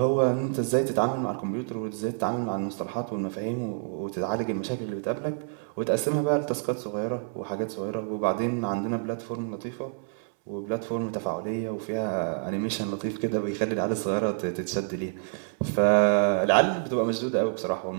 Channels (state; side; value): silent; left; 59 dB below the other